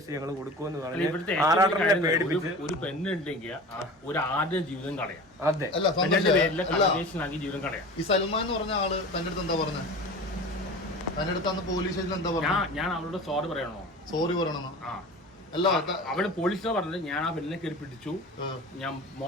ഞങ്ങൾ കൊടുക്കുമെന്ന് പറഞ്ഞു ആറാട്ടനെ പേടിപ്പിച്ച്. ഒരു പെണ്ണുണ്ടെങ്കിൽ ഒരു ആദ്യ ജീവിതം കളയാം. അതെ, ജീവിതം കളയാം. ഈ സൽമാൻ എന്ന് പറഞ്ഞ ആള് തന്റെ അടുത്ത് എന്താ പറഞ്ഞത്? തന്റെ അടുത്ത് പോലീസ് സ്റ്റേഷനിൽ എന്താ പറഞ്ഞത്? ഞാൻ അവളോട് സോറി പറയണോ? സോറി പറയണമെന്നോ? അല്ല, അവള് പോലീസിനെ പറഞ്ഞത് ഞാൻ ആ പെണ്ണിനെ കയറി പിടിച്ചു, ഞാൻ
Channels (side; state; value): both; normal; correlation 0.35